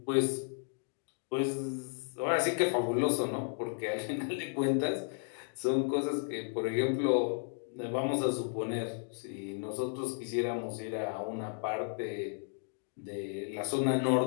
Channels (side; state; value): right; silent; 55 dB below the other